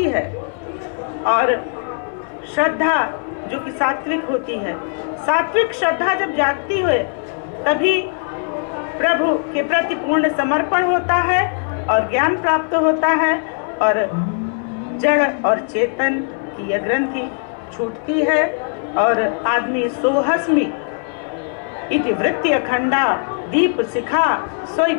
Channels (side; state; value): right; silent; 56 dB below the other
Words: है। और श्रद्धा जो कि सात्विक होती है, सात्विक श्रद्धा जब जागती है तभी प्रभु के प्रति पूर्ण समर्पण होता है और ज्ञान प्राप्त होता है, और जड़ और चेतन की यह ग्रंथि छूटती है, और आदमी सोहस्मि इति वृत्ति अखंडा, दीप शिखा सोई